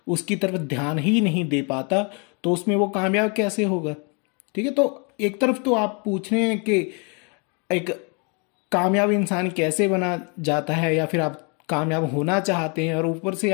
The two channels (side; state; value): right; quieter; 34.7 dB